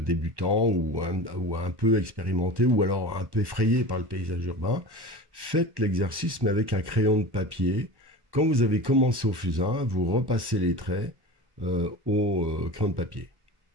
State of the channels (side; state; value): left; late; 1.1 ms